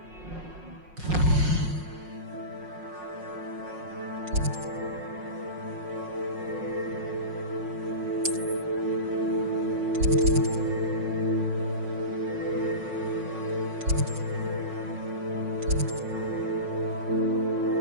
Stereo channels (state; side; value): late; left; 5.5 ms